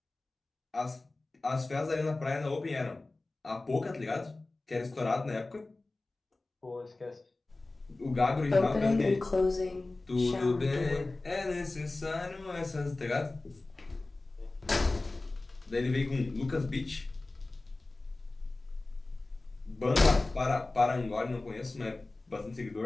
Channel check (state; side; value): quieter; right; 3.1 dB